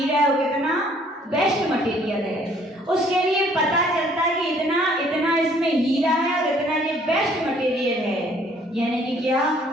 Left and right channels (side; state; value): both; normal; correlation 0.60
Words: है और कितना बेस्ट मटेरियल है। उसके लिए पता चलता है कि इतना इतना इसमें हीरा है और इतना ये बेस्ट मटेरियल है। यानी कि क्या,